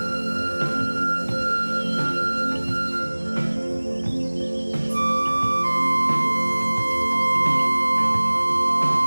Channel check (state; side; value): inverted; both; correlation -1.00